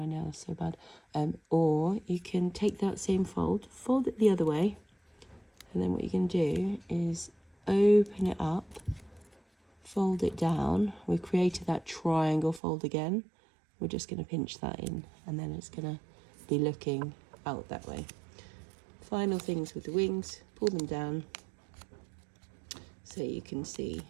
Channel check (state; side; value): drops out; left; at 12.6 s